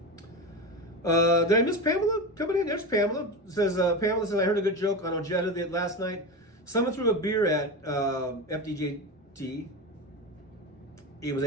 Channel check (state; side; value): normal; both; correlation 0.22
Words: Did I miss Pamela coming in? There's Pamela. Pamela says, I heard a good joke on Ojeda last night. Someone threw a beer at FDJT. It was